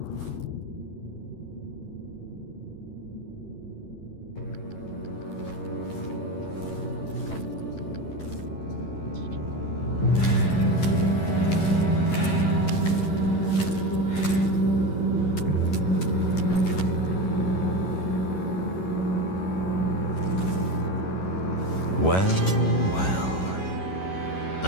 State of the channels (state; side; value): late; right; 11 ms